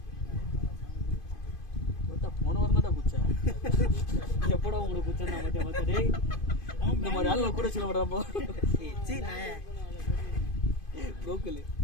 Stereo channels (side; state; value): right; late; 2.5 ms